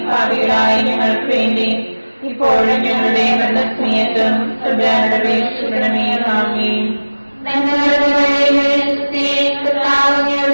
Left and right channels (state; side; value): inverted; both; correlation -1.00